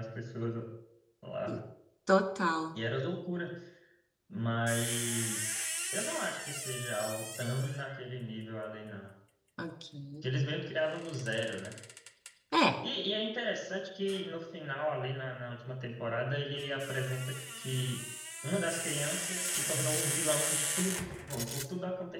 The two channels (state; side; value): identical; both; correlation 1.00